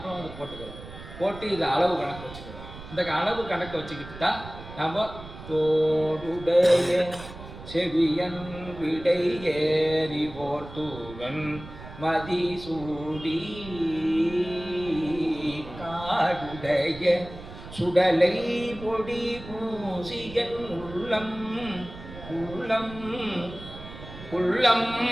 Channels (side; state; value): right; noise; rumble, 14 dB below the sound